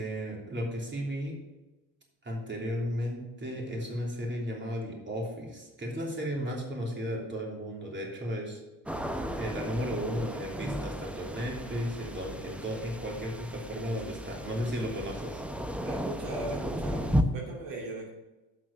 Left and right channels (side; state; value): both; normal; correlation 0.66